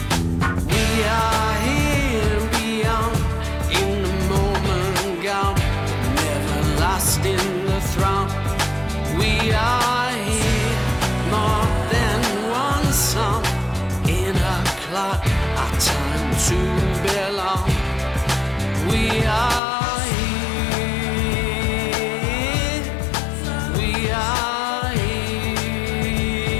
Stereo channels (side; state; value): right; drops out; at 19.6 s